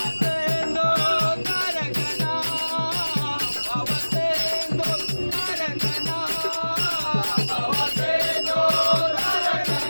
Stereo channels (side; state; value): both; inverted; correlation -1.00